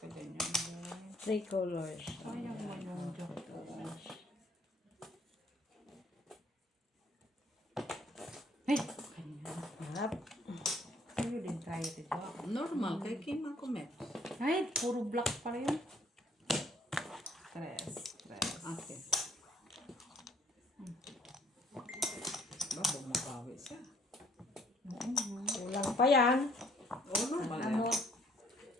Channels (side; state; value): both; normal; correlation 0.63